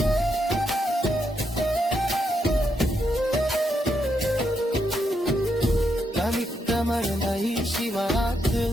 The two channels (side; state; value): both; normal; correlation 0.80